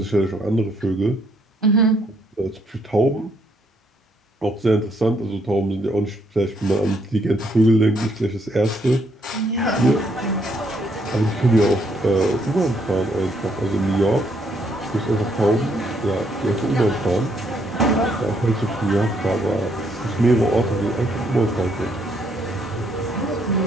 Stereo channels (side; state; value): both; normal; correlation 0.71